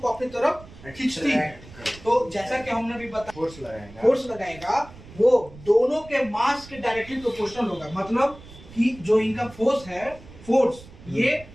अपनी तरफ खींचती है। तो जैसा कि हमने भी बताया, फोर्स लगाएगा वो दोनों के मास के डायरेक्टली प्रोपोर्शनल होगा। मतलब कि जो इनका फोर्स है, फोर्स ये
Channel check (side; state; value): right; noise; rumble, 19 dB below the sound